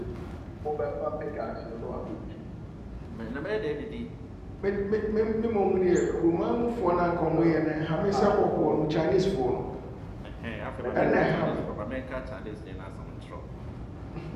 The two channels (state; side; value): identical; both; correlation 1.00